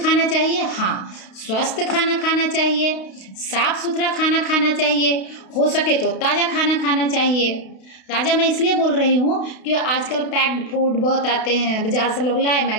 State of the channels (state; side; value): late; right; 32 ms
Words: चाहिए। हाँ, स्वस्थ खाना खाना चाहिए, साफ सुथरा खाना खाना चाहिए, हो सके तो ताज़ा खाना खाना चाहिए। ताज़ा मैं इसलिए बोल रही हूँ कि आजकल पैक्ड फूड बहुत आते हैं, बाजार से लोग लाए,